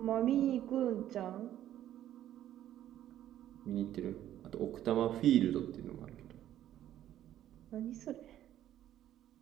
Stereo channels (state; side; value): quieter; left; 12.1 dB